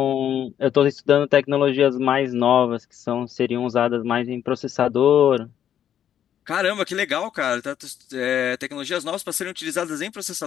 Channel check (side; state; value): right; quieter; 9.9 dB